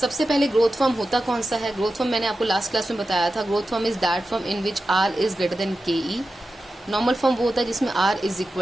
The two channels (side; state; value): both; normal; correlation 0.92